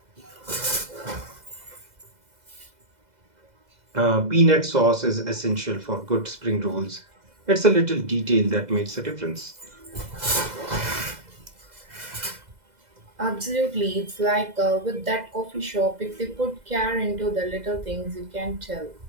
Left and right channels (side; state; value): left; late; 2.0 ms